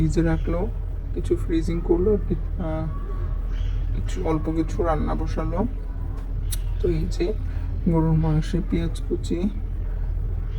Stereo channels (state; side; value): identical; both; correlation 1.00